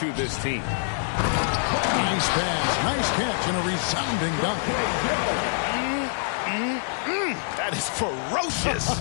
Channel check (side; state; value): right; silent; digital silence